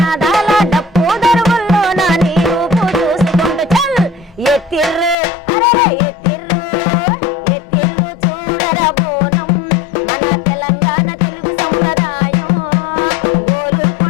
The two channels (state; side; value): drops out; right; at 5.2 s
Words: డప్పు దరువుల్లో నా నీ రూపు చూసుకుంటూ చల్ ఎత్తిర్రు, అరే ఎత్తిర్రు, ఎత్తిర్రు చూడరా బోనం, మన తెలంగాణ తెలుగు సంప్రదాయం.